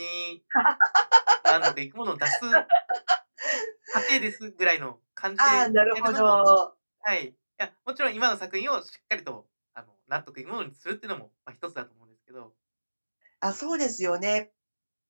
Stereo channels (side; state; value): both; inverted; correlation -1.00